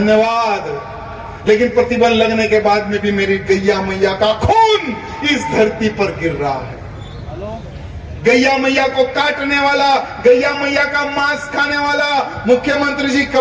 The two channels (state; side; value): identical; both; correlation 1.00